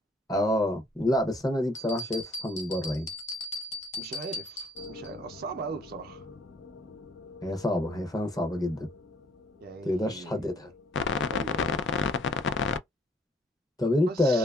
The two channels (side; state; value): both; normal; correlation 0.63